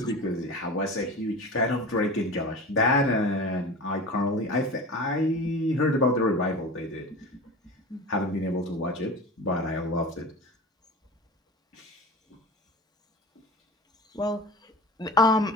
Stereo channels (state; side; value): normal; both; correlation 0.32